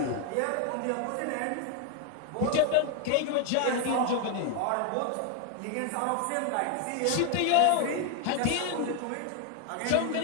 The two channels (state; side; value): different; both; correlation 0.01